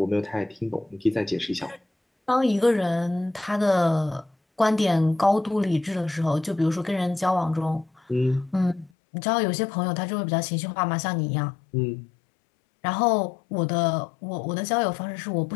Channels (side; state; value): right; drops out; at 8.9 s